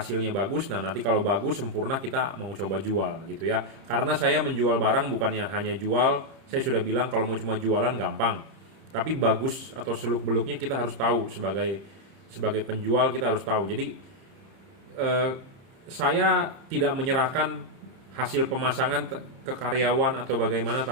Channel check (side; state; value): left; late; 30 ms